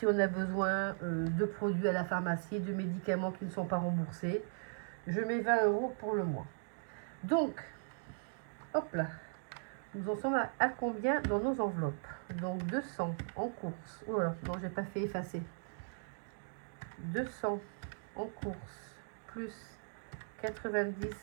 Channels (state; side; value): silent; left; digital silence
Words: on a besoin de produits à la pharmacie, de médicaments qui ne sont pas remboursés. Je mets 20 euros pour le mois. Donc, hop là, nous en sommes à combien dans nos enveloppes? Donc 200 en course. Oh là, non, j'ai pas fait effacer. 200 en course, plus